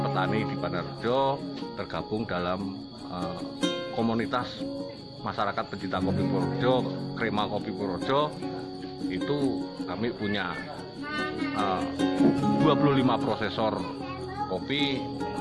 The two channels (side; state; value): both; identical; correlation 1.00